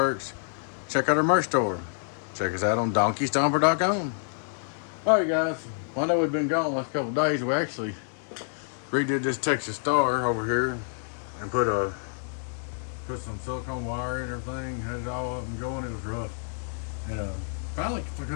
Check out our merch store. Check us out on DonkeyStomper.com. Alright guys, well, I know we've been gone the last couple of days. We actually redid this Texas Star over here and put some silicone wire and everything, had it all up and going. It was rough. And finally, I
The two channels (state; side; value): silent; right; 59 dB below the other